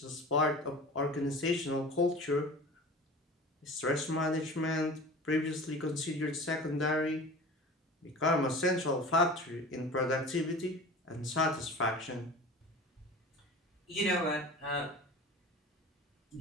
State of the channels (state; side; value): normal; both; correlation 0.38